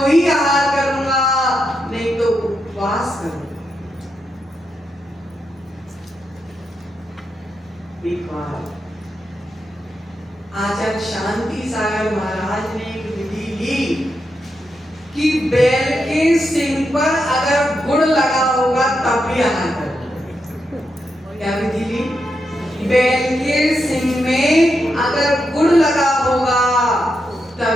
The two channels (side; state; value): both; normal; correlation 0.84